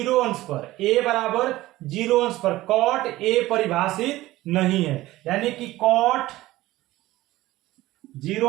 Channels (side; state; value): left; quieter; 17.1 dB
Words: अंश पर, ए बराबर 0 अंश पर कॉट ए परिभाषित नहीं है, यानी कि कॉट 0